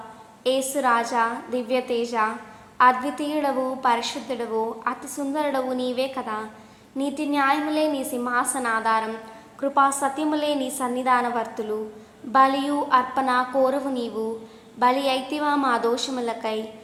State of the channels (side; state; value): both; identical; correlation 1.00